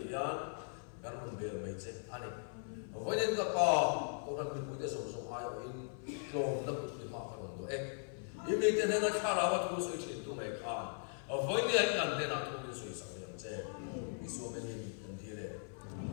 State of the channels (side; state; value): right; silent; 52 dB below the other